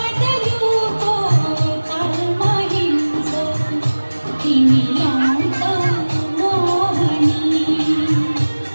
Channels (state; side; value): inverted; both; correlation -1.00